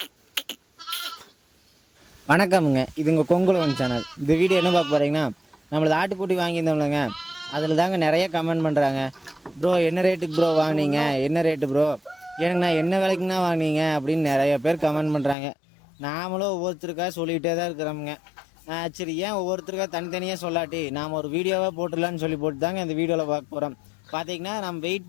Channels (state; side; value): drops out; right; at 15.4 s